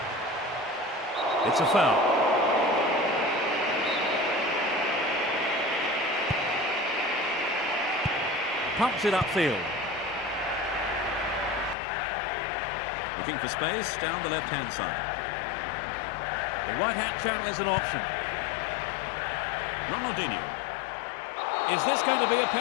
It's a foul. Pumps it upfield. Looking for space down the left-hand side. The right-hand channel is an option. Ronaldinho. Is this going to be a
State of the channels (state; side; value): drops out; right; at 11.8 s